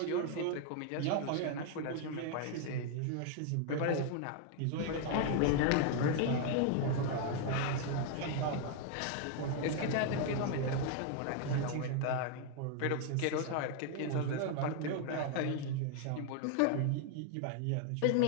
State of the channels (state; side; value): different; both; correlation 0.00